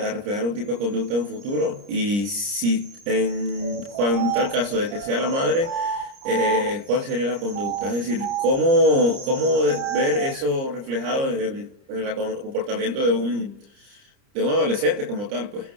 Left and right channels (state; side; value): late; left; 30 ms